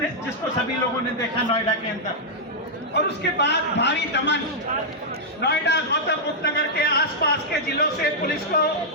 सभी लोगों ने देखा नोएडा के अंदर। और उसके बाद भारी दमन, नोएडा, गौतम बुद्ध नगर के आसपास के जिलों से पुलिस को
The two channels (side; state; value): both; normal; correlation -0.07